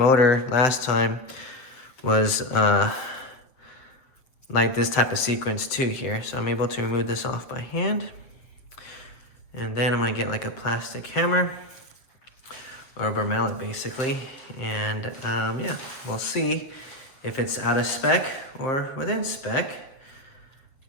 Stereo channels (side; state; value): right; late; 7.4 ms